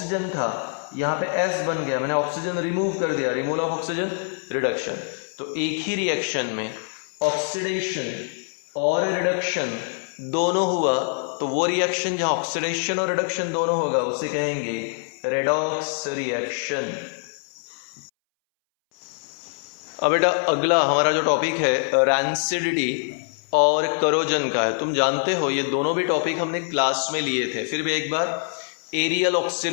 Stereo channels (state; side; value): silent; right; 62 dB below the other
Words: था, यहाँ पे S बन गया, मैंने ऑक्सीजन रिमूव कर दिया, रिमूवल ऑफ ऑक्सीजन, रिडक्शन। तो एक ही रिएक्शन में ऑक्सीडेशन और रिडक्शन दोनों हुआ, तो वो रिएक्शन जहाँ ऑक्सीडेशन और रिडक्शन दोनों होगा उसे कहेंगे रेडॉक्स रिएक्शन। अब बेटा अगला हमारा जो टॉपिक है रैंसिडिटी और करोजन का है। तुम जानते हो ये दोनों भी टॉपिक हमने क्लास में लिए थे, फिर भी एक बार, aerial